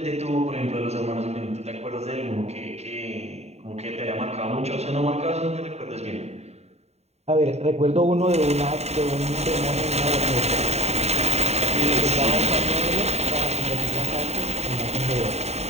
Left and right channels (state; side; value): late; left; 0.31 ms